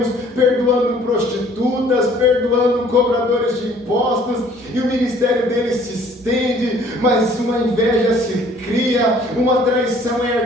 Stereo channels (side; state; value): both; normal; correlation 0.56